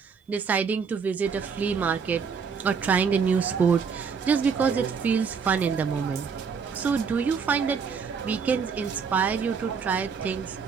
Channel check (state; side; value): quieter; left; 6.0 dB